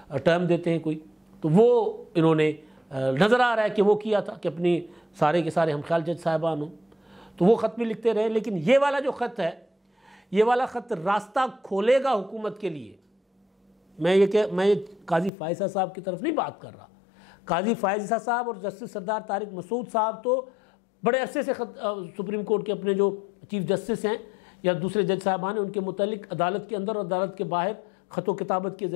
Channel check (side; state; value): right; drops out; at 15.3 s